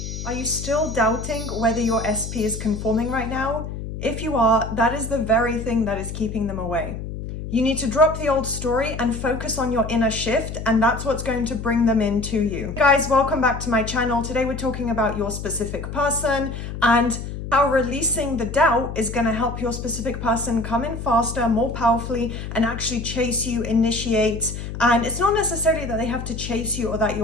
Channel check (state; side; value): noise; left; hum, 7 dB below the sound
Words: Are you still doubting whether your SP is conforming right now? If you are, that is the very thing that is keeping them away. You need to drop the old story and focus on your inner shift, and that's what's going to bring them into you. Hey guys, welcome back to my channel. Today we're talking about your specific person and how releasing the doubt is going to help your specific person come in faster, more powerfully, and actually chase you, initiate. And it's not necessarily that they have to chase you or that